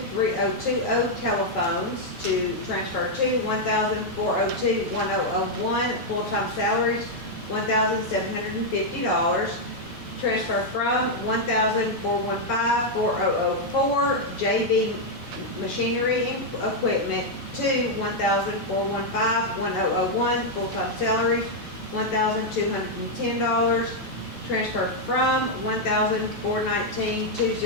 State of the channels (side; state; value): both; normal; correlation -0.01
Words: telephones to transfer to $1,402,1001 full-time salaries $1,750. Transfer from $1,415,4004 JV machinery and equipment to $1,415,1001 full-time salaries $1,210. Transfer from